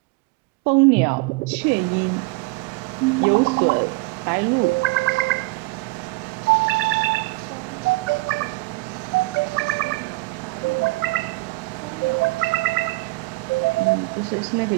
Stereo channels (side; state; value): left; quieter; 24.8 dB